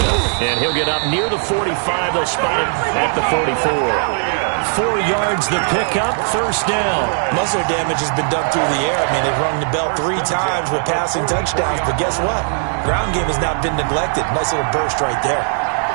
And he'll get up near the 45. They'll spot it at the 44. 4 yards the pickup, first down. Muscle damage has been done through the air. I mean, they've rung the bell 3 times with passing touchdowns, but guess what? Ground game has not been neglected. Nice little burst right there.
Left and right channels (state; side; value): silent; left; 58 dB below the other